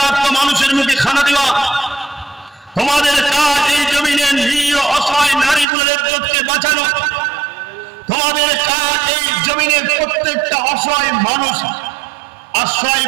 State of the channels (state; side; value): drops out; left; at 5.7 s